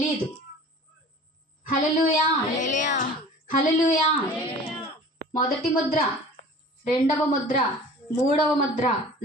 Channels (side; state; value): both; normal; correlation 0.43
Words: హల్లెలూయా, హల్లెలూయా. మొదటి ముద్ర, రెండవ ముద్ర, మూడవ ముద్ర,